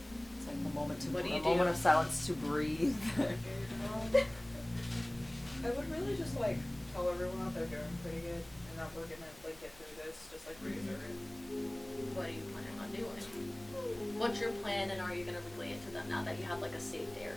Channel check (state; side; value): noise; left; hum, 24 dB below the sound